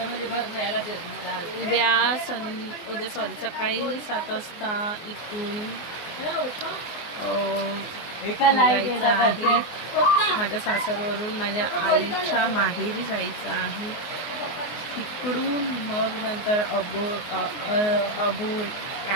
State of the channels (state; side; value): late; right; 24 ms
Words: सकाळी 7 वाजता इथून जायचं आहे. माझ्या सासरवरून माझ्या आईच्या माहेरी जायचं आहे. तिकडून मग नंतर अबू